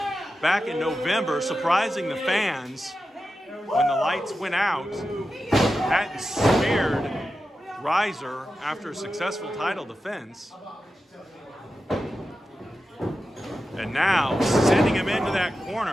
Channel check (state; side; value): normal; both; correlation 0.91